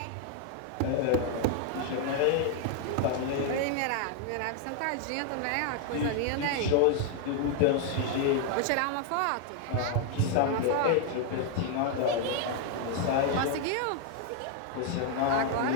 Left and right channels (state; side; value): different; both; correlation 0.00